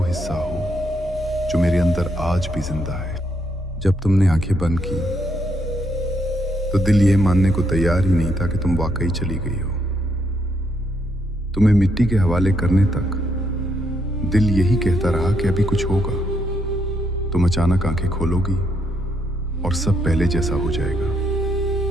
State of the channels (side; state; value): both; normal; correlation 0.76